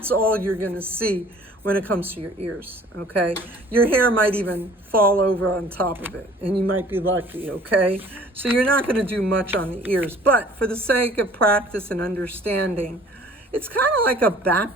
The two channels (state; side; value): normal; both; correlation 0.52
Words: all you're gonna see when it comes to your ears, okay? Your hair might even fall over on top of it, and you might be lucky, okay? So you're not gonna do much on the ears, but for the sake of practice and understanding, it's kind of like a